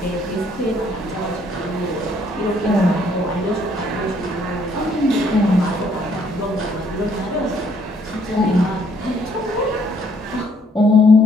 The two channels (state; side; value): normal; both; correlation 0.66